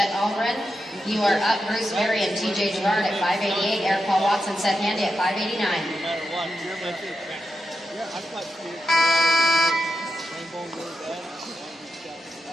Albrin. You are up, Bruce Berry and TJ Gerard at 588. Eric Paul Watson, Seth Handy at 589. No matter what, you're my too. Yeah, I thought you rainbow really bad.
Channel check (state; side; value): normal; both; correlation 0.88